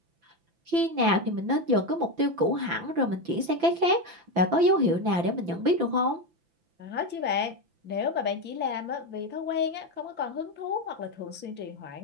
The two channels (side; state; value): left; late; 5.9 ms